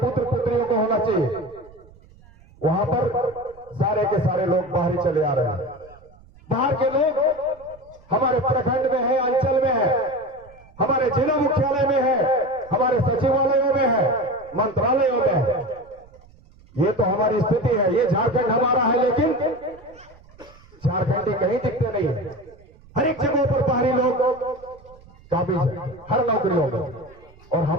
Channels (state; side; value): noise; right; rumble, 25 dB below the sound